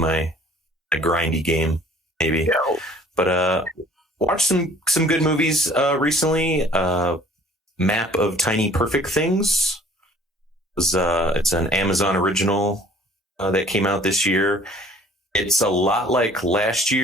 grindy game, maybe. Yeah. But watched some good movies recently. Map of Tiny Perfect Things. It's an Amazon original that came out this year. It's a lot like last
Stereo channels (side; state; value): both; normal; correlation 0.53